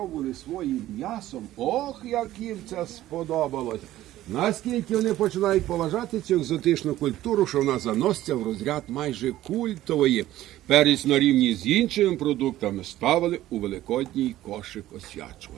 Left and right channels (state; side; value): quieter; left; 14.5 dB